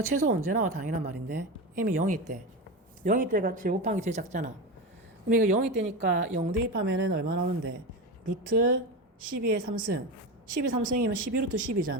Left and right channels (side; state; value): both; normal; correlation 0.21